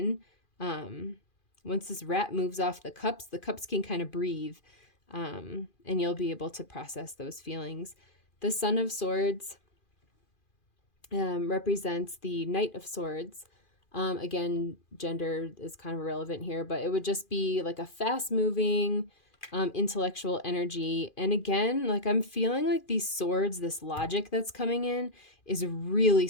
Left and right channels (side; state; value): right; late; 2.4 ms